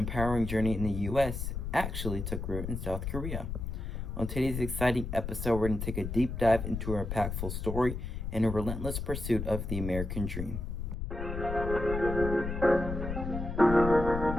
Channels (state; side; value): noise; left; rumble, 5 dB below the sound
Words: journey in the U.S. actually took root in South Korea. On today's exciting episode, we're going to take a deep dive into her impactful story and a relentless pursuit of the American dream.